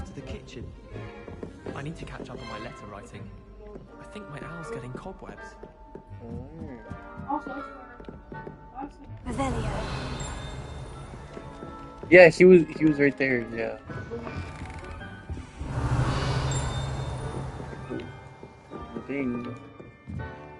to the kitchen. I need to catch up on my letter writing. I think my owl's getting cobwebs. Revelio. Yeah, he was right there, yeah. ding.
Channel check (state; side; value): identical; both; correlation 1.00